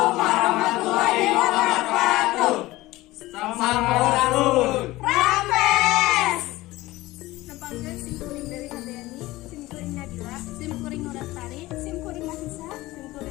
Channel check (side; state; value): right; quieter; 18.5 dB